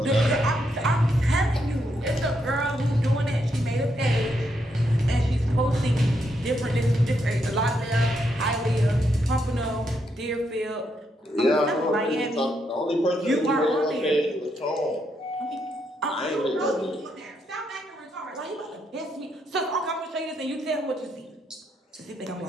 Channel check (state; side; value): normal; both; correlation 0.78